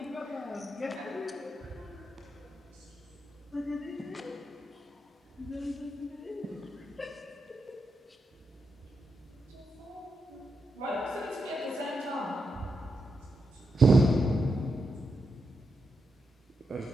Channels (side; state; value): both; normal; correlation 0.85